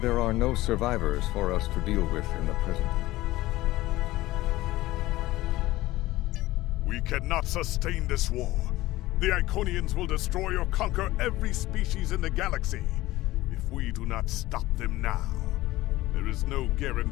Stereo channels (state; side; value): quieter; right; 17.5 dB